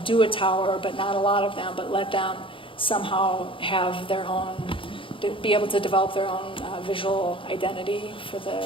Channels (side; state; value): right; late; 0.25 ms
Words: do a tower, but not a lot of them, but let them somehow have their own, be able to develop their own visual identity for the,